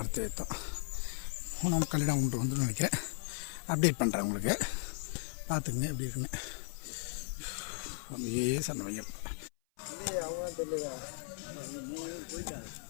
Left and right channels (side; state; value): right; silent; 54 dB below the other